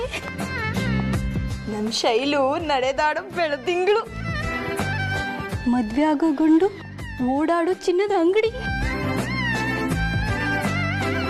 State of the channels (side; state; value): both; identical; correlation 1.00